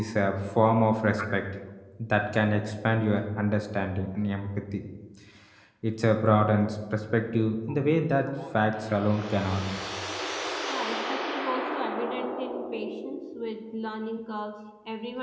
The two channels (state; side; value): identical; both; correlation 1.00